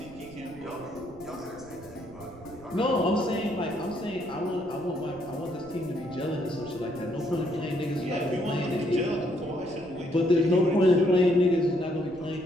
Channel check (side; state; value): right; noise; rumble, 20 dB below the sound